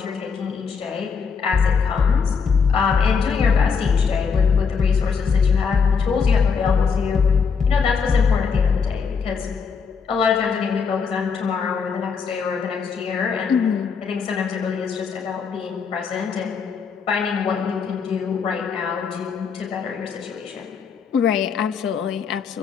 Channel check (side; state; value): right; quieter; 5.8 dB